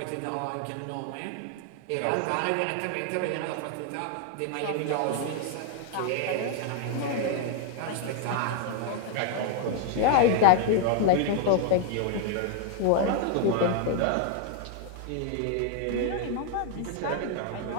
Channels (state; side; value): different; both; correlation 0.00